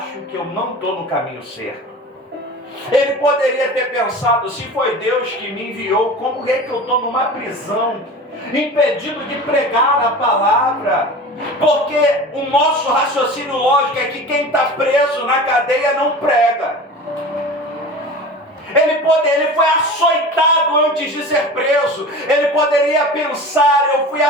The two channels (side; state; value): both; normal; correlation 0.35